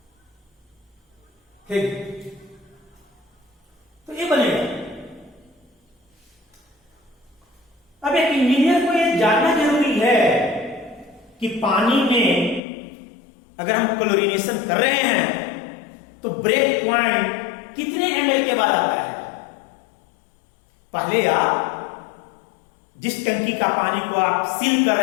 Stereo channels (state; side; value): drops out; right; at 12.6 s